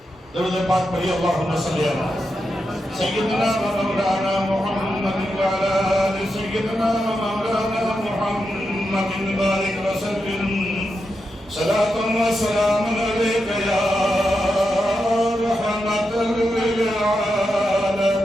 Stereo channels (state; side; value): normal; both; correlation 0.87